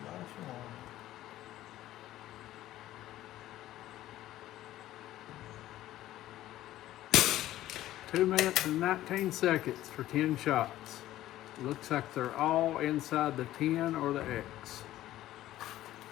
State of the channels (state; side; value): quieter; right; 14.3 dB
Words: Nice one. Two minutes and 19 seconds for 10 shots. Looks like they're all inside the 10 or the X.